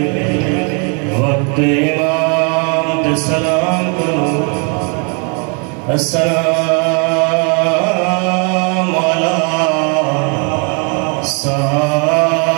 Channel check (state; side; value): quieter; left; 36.2 dB